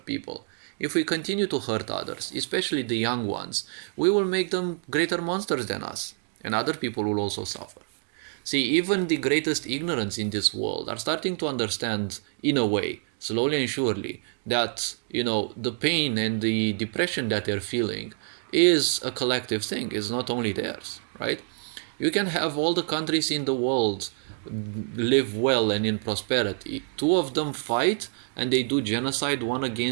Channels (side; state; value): left; silent; 60 dB below the other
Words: people, if we continue to hurt others, especially the young ones, we will make them greater monsters than us, and other people will also suffer. See, even the greatest ignorance in this world are starting to understand, in a way, slowly and surely, that, the pain and the depression that they're feeling is a collective thing, is not only theirs, right? You can have all the countries in the world live well and in prosperity. Two of them fight and they do genocide one